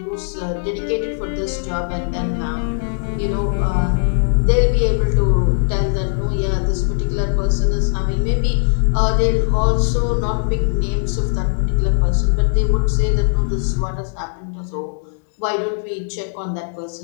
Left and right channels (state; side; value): silent; right; digital silence